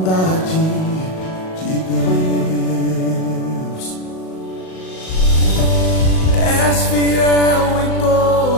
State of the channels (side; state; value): right; late; 38 ms